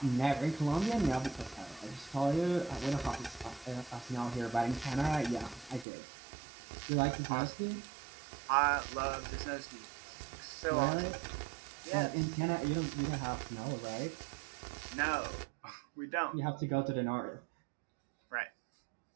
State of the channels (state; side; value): drops out; left; at 5.9 s